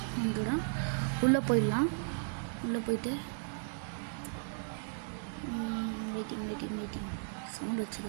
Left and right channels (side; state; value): left; silent; digital silence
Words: வந்துடும். உள்ளே போயிடலாம். உள்ளே போயிட்டு வெயிட்டிங் சவுண்ட்